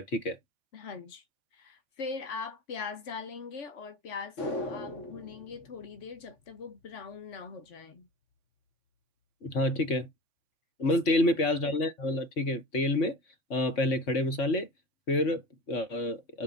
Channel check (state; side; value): late; right; 3.5 ms